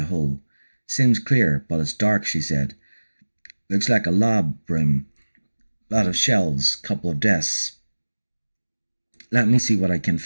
hole. "Seems clear, but it's dark," she said. "Looks like a lab room. Lot of shelves, couple of desks. Let me see what I can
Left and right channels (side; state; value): both; inverted; correlation -1.00